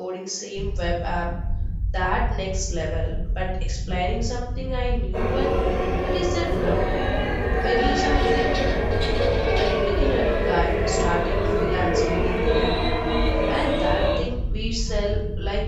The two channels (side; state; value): both; identical; correlation 1.00